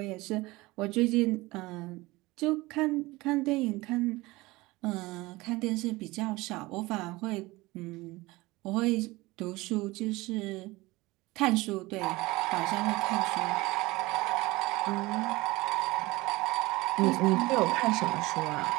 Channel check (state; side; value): quieter; left; 21.1 dB